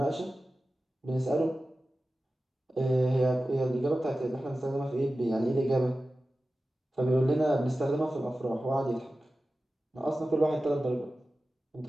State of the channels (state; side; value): normal; both; correlation 0.94